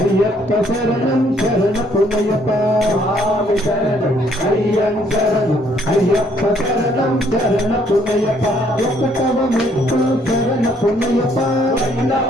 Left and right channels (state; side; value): normal; both; correlation 0.66